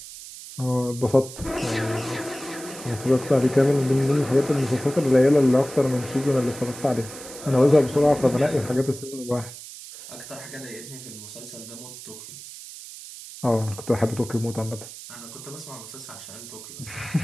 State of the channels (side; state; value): right; noise; hiss, 14 dB below the sound